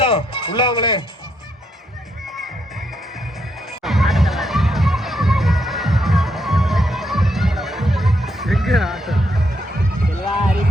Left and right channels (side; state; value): both; normal; correlation 0.77